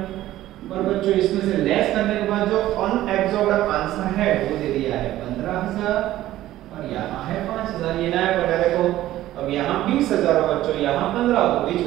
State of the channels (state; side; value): quieter; left; 14.5 dB